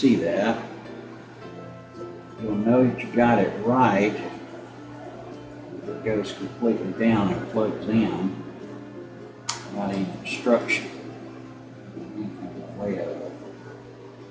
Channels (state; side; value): identical; both; correlation 1.00